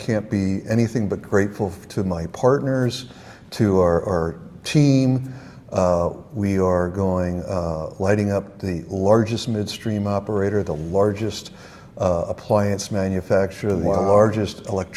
be anything but grateful to my partners, to our team. We are lighting up the largest midstream operator, the largest appliance manufacturer, the largest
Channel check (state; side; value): identical; both; correlation 1.00